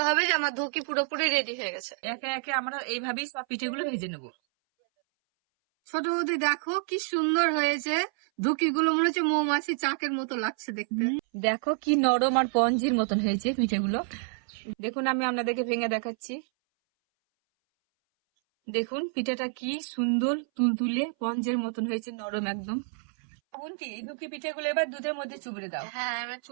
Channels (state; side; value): silent; left; 59 dB below the other